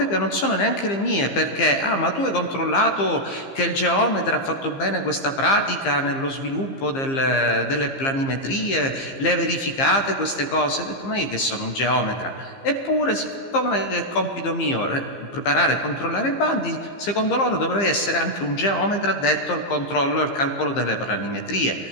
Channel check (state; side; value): late; right; 15 ms